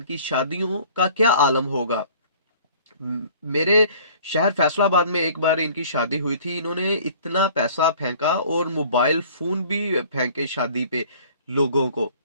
शादियों का क्या आलम होगा। मेरे शहर फैसलाबाद में एक बार इनकी शादी हुई थी, इन्होंने इतना पैसा फेंका और मोबाइल फोन भी फेंके शादी पे लोगों को,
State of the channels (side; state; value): both; inverted; correlation -0.51